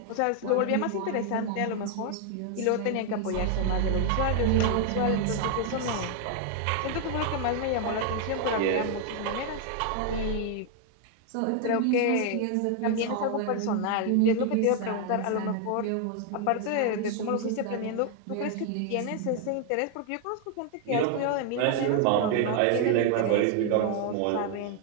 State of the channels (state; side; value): different; both; correlation 0.00